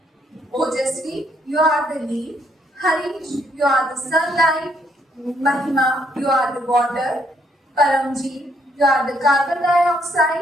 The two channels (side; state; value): both; normal; correlation 0.70